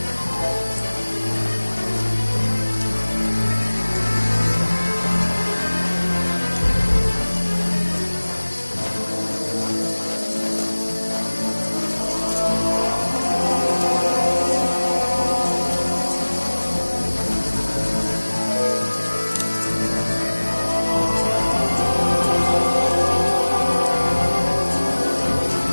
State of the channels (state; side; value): inverted; both; correlation -1.00